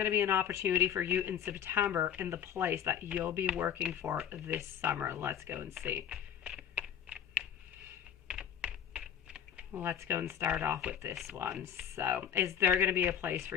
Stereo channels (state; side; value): quieter; right; 9.2 dB